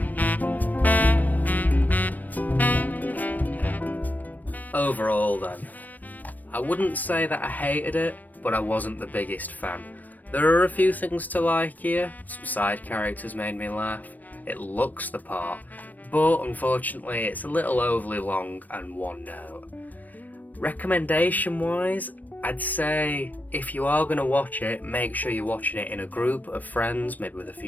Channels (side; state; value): right; late; 0.083 ms